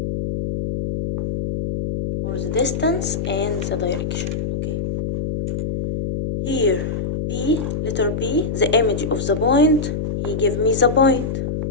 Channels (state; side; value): noise; left; hum, 3 dB below the sound